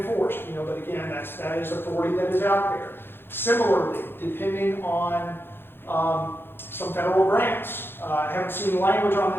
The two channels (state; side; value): late; right; 0.10 ms